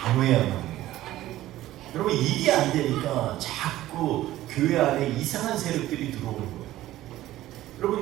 합니다. 여러분 이게 안 되니까 자꾸 교회 안에 이상한 세력들이 들어오는 거예요.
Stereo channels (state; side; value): quieter; left; 15.0 dB